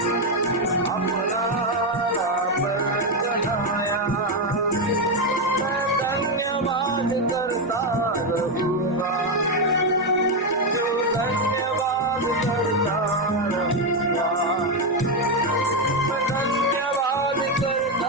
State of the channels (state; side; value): normal; both; correlation 0.06